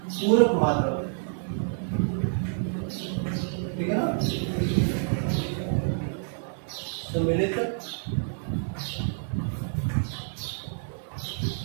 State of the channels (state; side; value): silent; left; 59 dB below the other